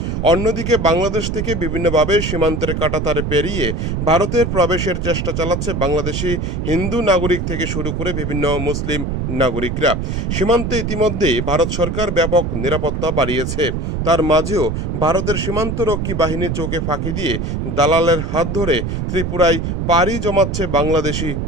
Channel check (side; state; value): right; noise; rumble, 2 dB below the sound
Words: অন্যদিকে বাংলাদেশ থেকে বিভিন্নভাবে সীমান্তের কাঁটাতারে পেরিয়ে ভারতের প্রবেশের চেষ্টা চালাচ্ছে বাংলাদেশি হিন্দু নাগরিক থেকে শুরু করে বিভিন্ন মুসলিম নাগরিকরা। সীমান্তে ইতিমধ্যেই ভারত সরকার ব্যাপক নিরাপত্তা বাড়িয়েছে। তার মাঝেও ভারতের সীমান্তরক্ষী বাহিনী চোখে ফাঁকি দিয়ে দালালের হাত ধরে ত্রিপুরায় পাড়ি জমাচ্ছে বাংলাদেশি